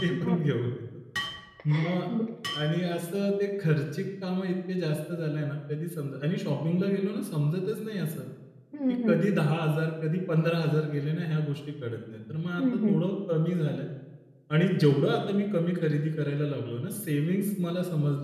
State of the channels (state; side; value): identical; both; correlation 1.00